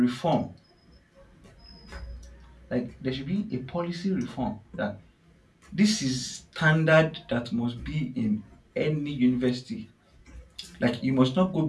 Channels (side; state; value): both; identical; correlation 1.00